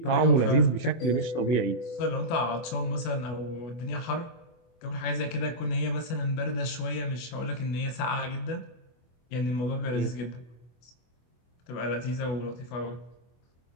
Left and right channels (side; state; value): right; late; 24 ms